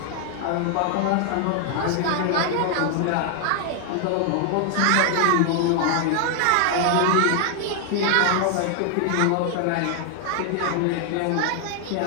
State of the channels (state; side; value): different; both; correlation 0.00